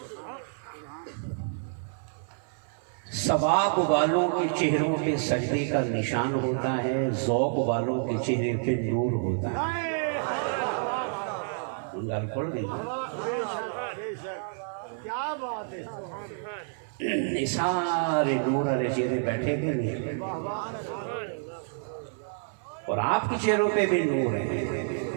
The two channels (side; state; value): left; silent; 59 dB below the other